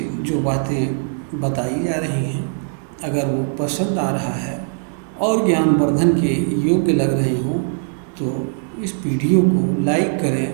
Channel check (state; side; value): silent; left; digital silence